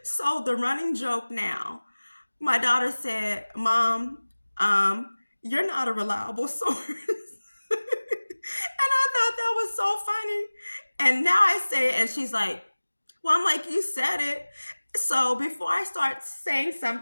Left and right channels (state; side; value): inverted; both; correlation -1.00